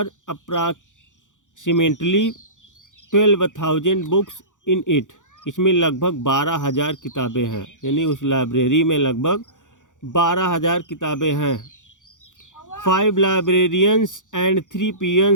approximately 12,000 books in it, इसमें लगभग 12,000 किताबें हैं। यानी उस लाइब्रेरी में लगभग 12,000 किताबें हैं। 5 librarians and 3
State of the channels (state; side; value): late; right; 0.87 ms